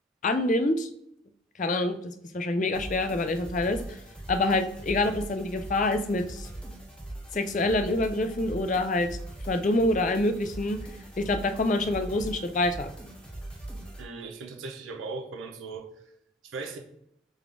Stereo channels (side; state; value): both; normal; correlation 0.45